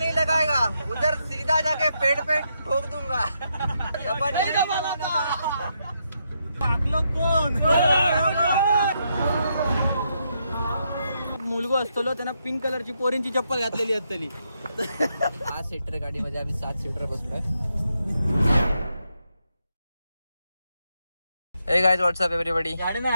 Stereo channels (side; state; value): both; inverted; correlation -0.80